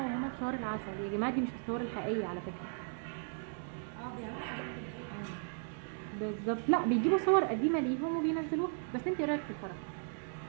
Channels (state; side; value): silent; left; 54 dB below the other